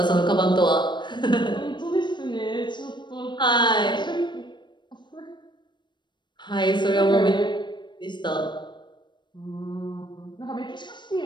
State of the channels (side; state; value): right; late; 0.22 ms